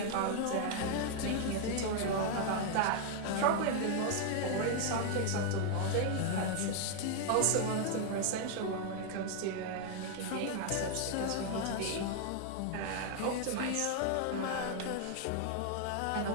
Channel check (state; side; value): different; both; correlation 0.00